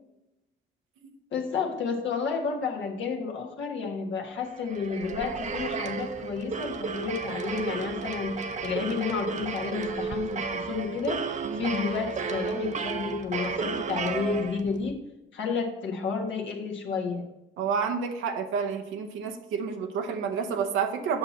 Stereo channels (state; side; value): normal; both; correlation 0.32